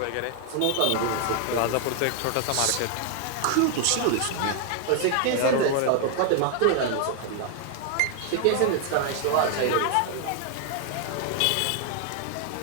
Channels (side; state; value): both; different; correlation 0.00